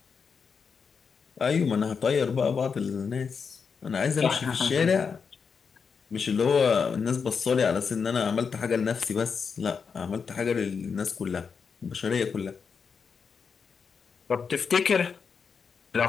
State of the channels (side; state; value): right; quieter; 5.9 dB